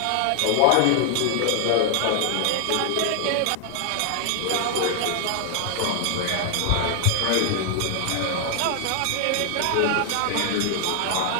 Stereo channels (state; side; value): different; both; correlation 0.00